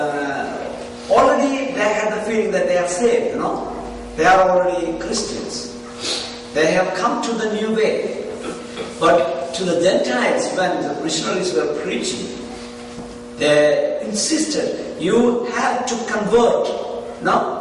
already they had the feeling that they are saved, they are already Christians. They have come to the new way. But to the Gentiles, when the missionaries were preaching, they insisted, you have to convert.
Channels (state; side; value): identical; both; correlation 1.00